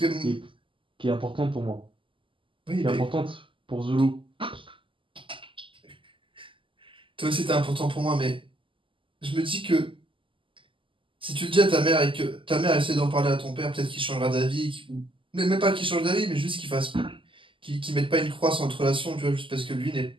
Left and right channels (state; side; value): late; left; 0.25 ms